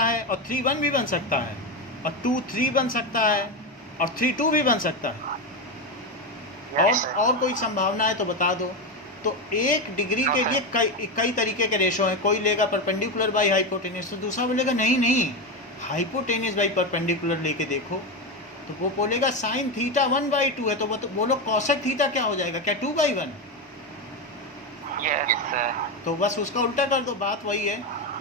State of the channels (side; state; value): both; normal; correlation 0.13